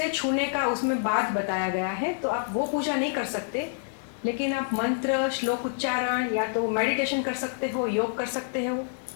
छूने का उसमें बात बताया गया है, तो आप वो पूजा नहीं कर सकते, लेकिन आप मंत्र श्लोक उच्चारण या तो मेडिटेशन कर सकते हो, योग कर सकते हो,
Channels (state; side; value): silent; right; digital silence